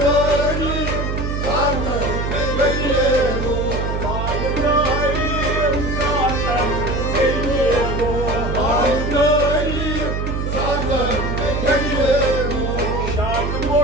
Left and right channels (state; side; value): noise; right; hum, 2 dB below the sound